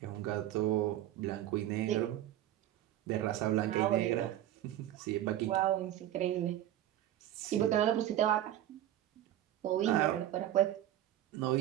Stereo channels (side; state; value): left; quieter; 12.7 dB